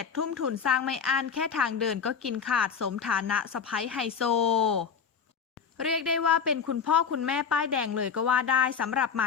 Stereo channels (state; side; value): quieter; right; 6.5 dB